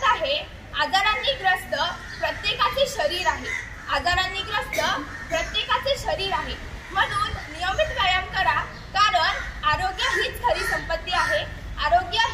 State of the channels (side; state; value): both; identical; correlation 1.00